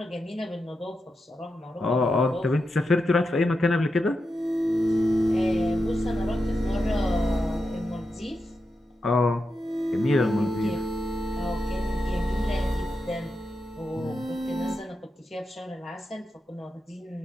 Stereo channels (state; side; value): normal; both; correlation 0.87